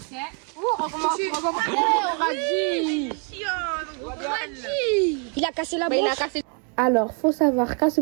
Oh, recommence. On a dit. Il a cassé la Bah, il branche. a cassé. Alors, faut savoir qu'à ce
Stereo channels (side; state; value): left; quieter; 38.9 dB